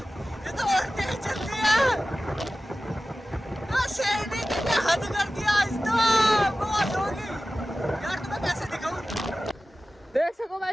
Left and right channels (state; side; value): normal; both; correlation 0.95